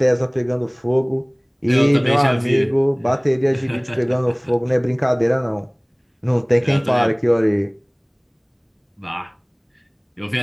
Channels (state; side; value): identical; both; correlation 1.00